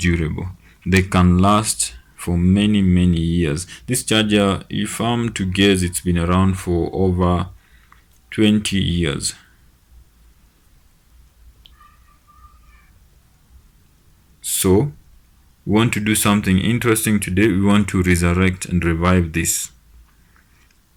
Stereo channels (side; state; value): both; identical; correlation 1.00